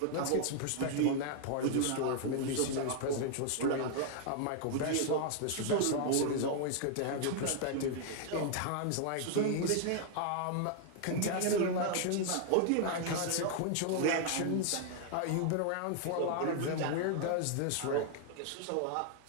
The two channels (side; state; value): both; different; correlation 0.00